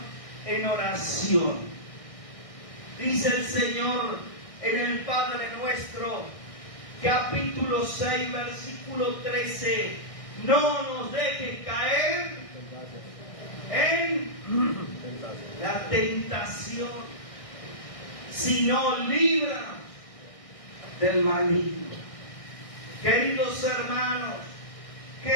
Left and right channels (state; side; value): late; right; 1.6 ms